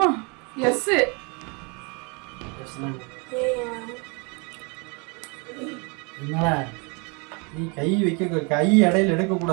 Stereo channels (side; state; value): left; quieter; 32.0 dB